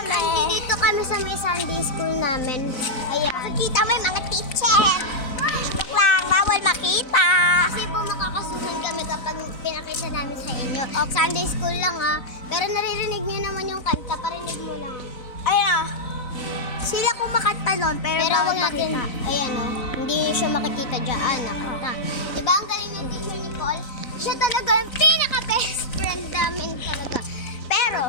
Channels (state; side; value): late; right; 4.0 ms